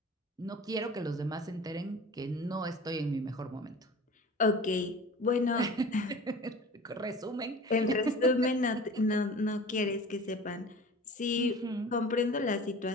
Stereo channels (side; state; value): both; normal; correlation 0.40